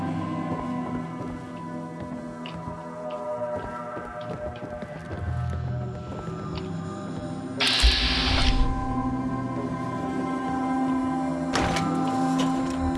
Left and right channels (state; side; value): identical; both; correlation 1.00